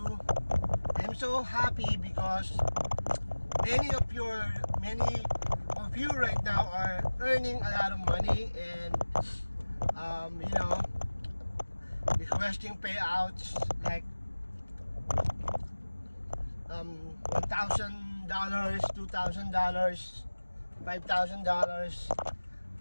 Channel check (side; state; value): both; inverted; correlation -1.00